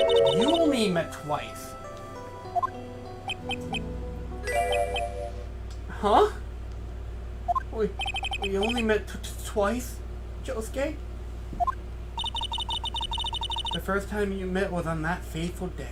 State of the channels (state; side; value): identical; both; correlation 1.00